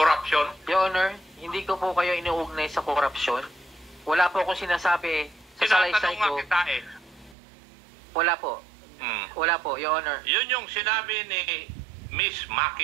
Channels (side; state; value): left; drops out; at 7.4 s